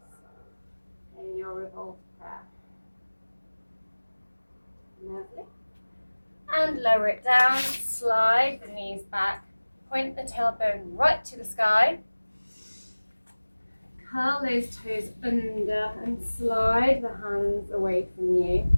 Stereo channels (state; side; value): inverted; both; correlation -1.00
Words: in your revolved prayer. Lovely. And lower it down, slide the knees back, point the tailbone right to the sky. Curl those toes under and slide the hands away from you.